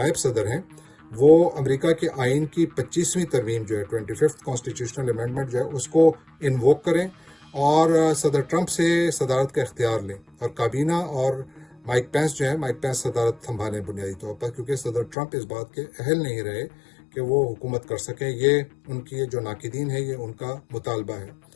صدر ہیں وہ امریکہ کے آئین کی 25ویں ترمیم جو ہے 25th کانسٹیٹیوشنل امینڈمنٹ جو ہے اس کو انووک کریں اور صدر ٹرمپ سے صدارت کا اختیار لیں، اور کابینہ اور مائک پینس جو ہے مائک پینس صدارت سنبھالیں بنیادی طور پر، کیونکہ صدر ٹرمپ اس بات کے اہل نہیں رہے کہ وہ حکومت کر سکیں۔ یہ ان کی جو ناقدین ہے یہ ان کا مطالبہ ہے۔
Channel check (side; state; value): right; drops out; at 15.2 s